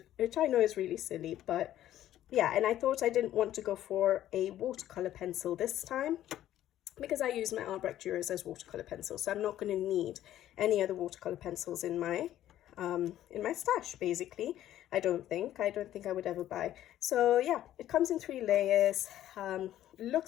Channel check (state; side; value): quieter; right; 12.6 dB